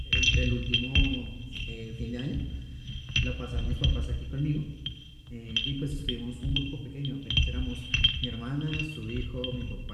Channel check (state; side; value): identical; both; correlation 1.00